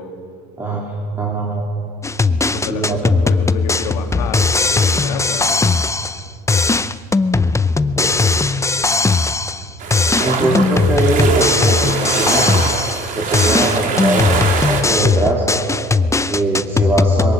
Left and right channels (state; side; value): normal; both; correlation 0.56